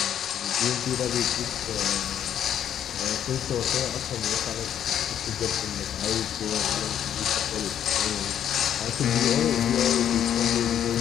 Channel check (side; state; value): right; quieter; 9.8 dB